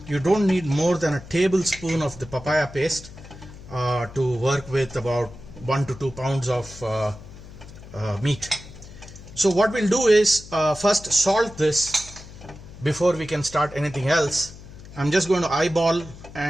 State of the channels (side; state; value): left; noise; hum, 17 dB below the sound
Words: you don't need more than a tablespoon of the papaya paste to work with about 1 to 2 pounds of meat. So what we'll do is first salt this before we can start anything else. I'm just going to eyeball